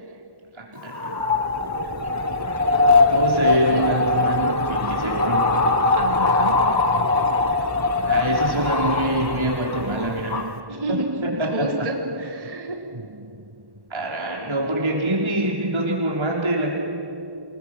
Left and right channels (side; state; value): left; late; 1.1 ms